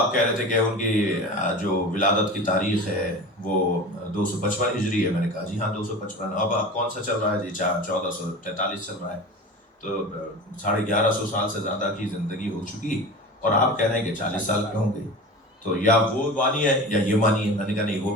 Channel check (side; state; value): both; normal; correlation 0.33